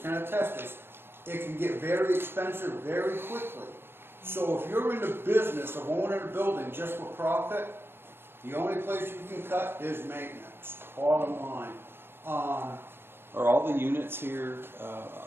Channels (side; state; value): left; late; 0.11 ms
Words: attest this. It can get very expensive very quickly. So if you're in the business of owning a building just for profit, the only place you can cut is maintenance, bottom line. Are all the units here